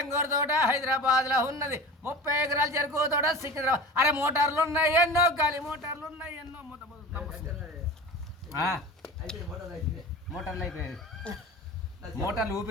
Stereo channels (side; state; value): both; normal; correlation 0.34